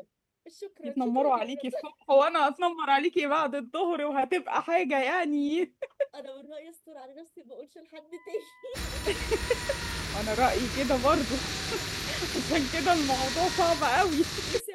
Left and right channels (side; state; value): both; identical; correlation 1.00